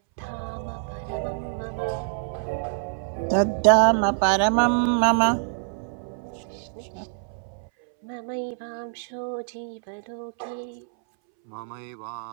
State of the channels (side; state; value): left; silent; 60 dB below the other